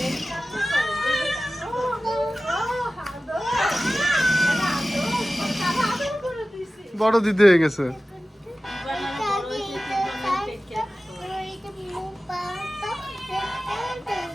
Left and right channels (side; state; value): both; normal; correlation 0.96